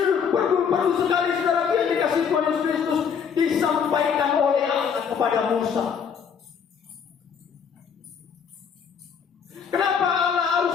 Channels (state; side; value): quieter; right; 6.9 dB